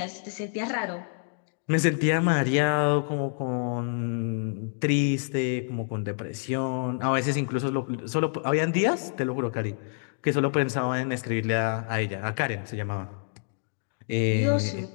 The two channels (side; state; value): right; silent; digital silence